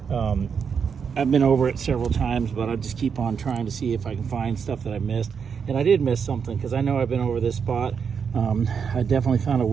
I've been over it several times, but I just keep on trying to see if I can find stuff that I missed. And I did miss something, because I know I've been over this spot. I definitely found a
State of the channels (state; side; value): quieter; left; 6.5 dB